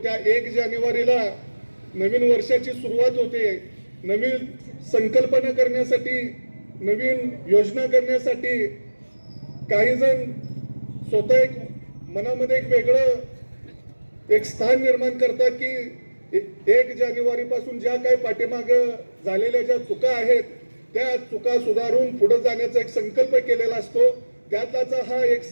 त्या 1 जानेवारीला नवीन वर्षाची सुरुवात होते. नवीन संकल्पना करण्यासाठी नवीन योजना करण्यासाठी काही जण स्वतः एक मनामध्ये एक वेगळं एक स्थान निर्माण करतात की 1 जानेवारी पासून ज्या काही पाठीमाग झालेल्या ज्या चुका आहेत त्या चुका सुधारून पुढे जाण्याचा एक संकल्प केलेला असतो. त्यातलाच हा एक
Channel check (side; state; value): both; inverted; correlation -1.00